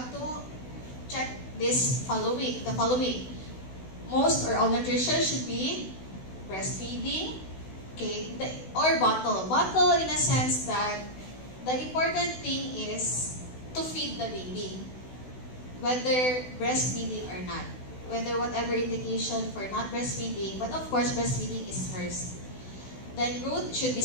to check the following. Most or all nutrition should be breastfeeding, Okay, or bottle. Bottle in a sense that the important thing is to feed the baby, whether breastfeeding or not. Whether whatever indication for not breastfeeding, but of course breastfeeding is first. Then growth should be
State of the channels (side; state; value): right; late; 16 ms